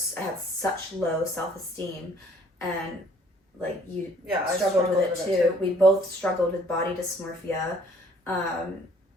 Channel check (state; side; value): normal; both; correlation 0.59